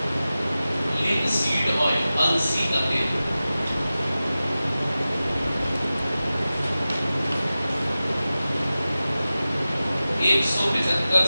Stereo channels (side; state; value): both; inverted; correlation -0.95